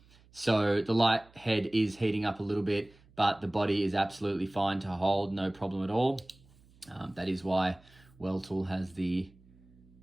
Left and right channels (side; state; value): right; noise; hum, 28 dB below the sound